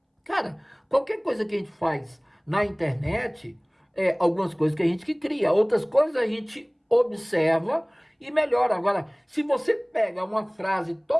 Cara, qualquer coisa que a gente faz na internet, algumas coisas que a gente que cria, outras coisas a gente observa e melhora. Agora, se você pega uma frase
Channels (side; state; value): both; identical; correlation 1.00